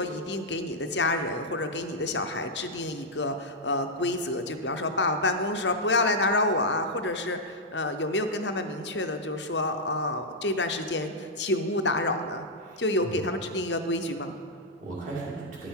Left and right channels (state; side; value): normal; both; correlation -0.05